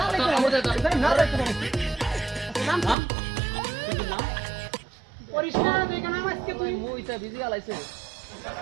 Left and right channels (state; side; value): drops out; left; at 3.0 s